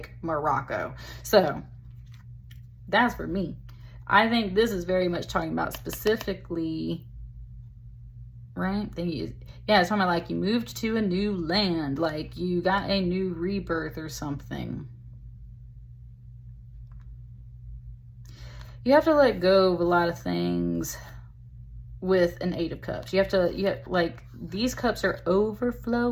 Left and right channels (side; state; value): both; identical; correlation 1.00